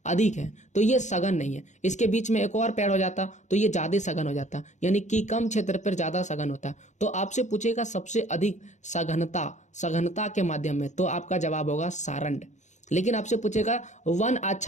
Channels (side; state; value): right; late; 0.34 ms